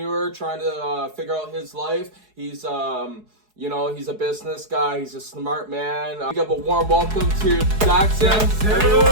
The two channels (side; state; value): left; late; 4.7 ms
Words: trying to figure out his life. He's he's a business guy. He's a smart man. Give a warm welcome to Jackson. What's